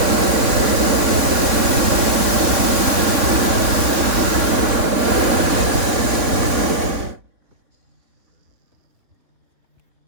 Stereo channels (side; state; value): left; late; 3.1 ms